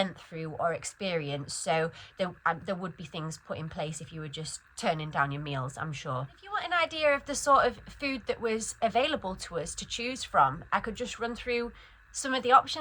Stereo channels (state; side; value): identical; both; correlation 1.00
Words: through or experienced. So there would be things put in place if you were just turning down your meals, I'm sure. If you want an idea of the sort of food that was available to us to choose from, I could just run through some of the